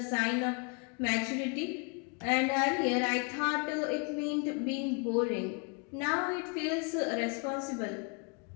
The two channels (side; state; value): right; quieter; 35.0 dB